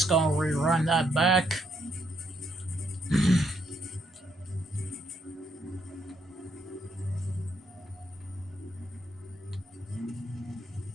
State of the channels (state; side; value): normal; both; correlation 0.74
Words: going to rerun that back.